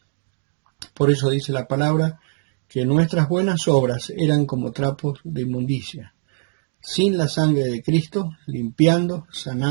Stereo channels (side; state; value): left; silent; digital silence